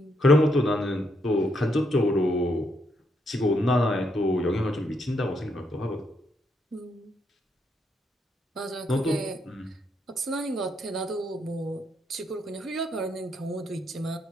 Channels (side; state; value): both; normal; correlation 0.76